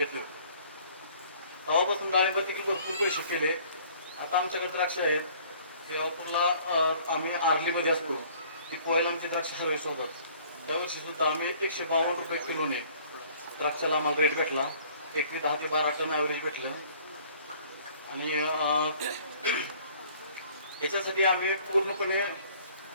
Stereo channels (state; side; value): inverted; both; correlation -0.55